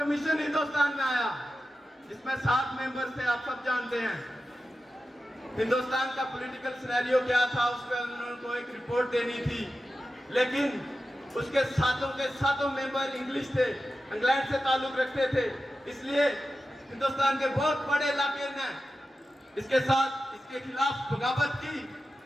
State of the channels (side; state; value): both; normal; correlation 0.93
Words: हिंदुस्तान में आया, जिसमें 7 मेंबर थे, आप सब जानते हैं। हिंदुस्तान का पॉलिटिकल सिनेरियो क्या था, उस पर उनको एक रिपोर्ट देनी थी, लेकिन उसके सातों के सातों मेंबर इंग्लिश थे, इंग्लैंड से ताल्लुक रखते थे, इसलिए हिंदुस्तान के बहुत बड़े इलाके ने इसके साथ इसके खिलाफ बगावत की,